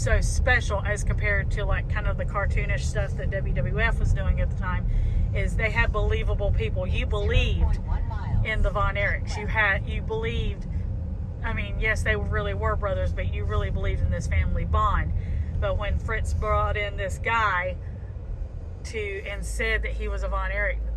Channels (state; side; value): identical; both; correlation 1.00